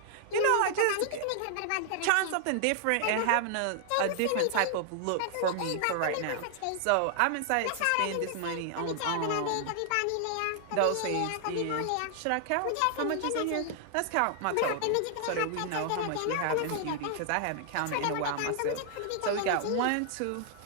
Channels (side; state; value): both; different; correlation 0.00